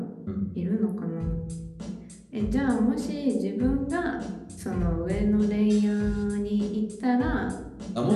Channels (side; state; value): both; identical; correlation 1.00